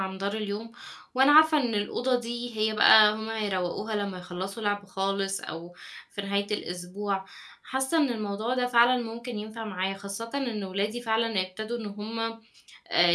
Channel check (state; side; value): identical; both; correlation 1.00